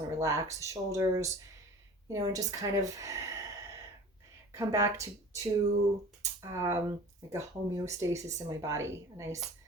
to relax the shoulders, and just kind of come back to like a homeostasis in my body, a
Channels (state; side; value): normal; both; correlation 0.41